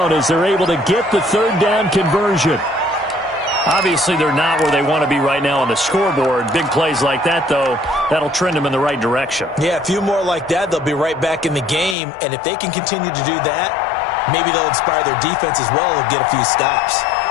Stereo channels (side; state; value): right; drops out; at 12.0 s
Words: as they're able to get the 3rd down conversion. Obviously, they're not where they want to be right now on the scoreboard. Big plays like that, though, that'll trend them in the right direction. Yeah, a few more like that, they'll be right back in the game. And if they can continue to do that, maybe they'll inspire their defense as well and get a few stops.